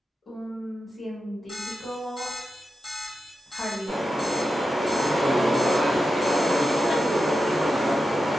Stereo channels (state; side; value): normal; both; correlation 0.90